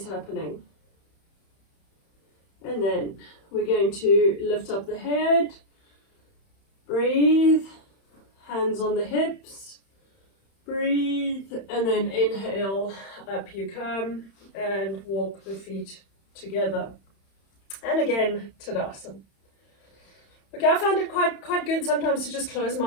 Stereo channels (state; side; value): late; right; 31 ms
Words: happening. And then we're going to lift up the head. Breathe. Hands on the hips. Breathe. And then inhale. Up you come. And walk the feet together. And again, Tadasana. Okay, I find it quite good sometimes to just close